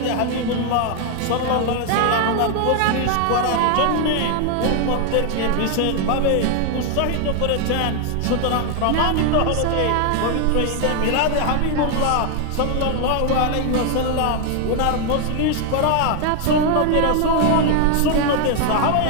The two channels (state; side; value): different; both; correlation 0.00